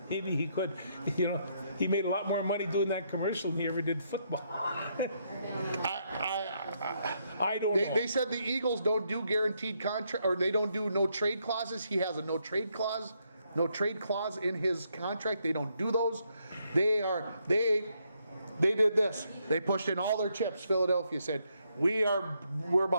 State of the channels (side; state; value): both; inverted; correlation -0.76